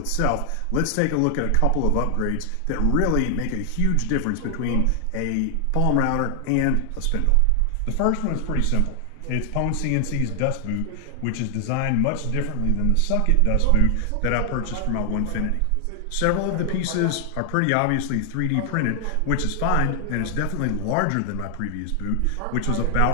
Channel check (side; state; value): both; different; correlation 0.00